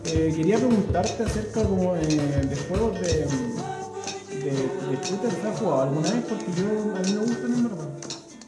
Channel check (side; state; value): both; identical; correlation 1.00